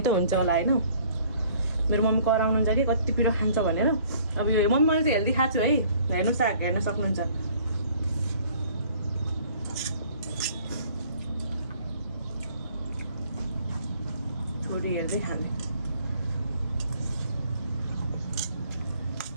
हुन्छ होला होइन। मेरो मम्मी कराउनुहुन्छ कि कति पिरो खान्छ भनेर। अब यो मम्मी मैले चाहिँ हेल्दी खाएको छु है, हेर्नुहोस् हेर्न सक्नुहुन्छ। छोरी हेर्दै खाने।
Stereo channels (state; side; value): inverted; both; correlation -0.56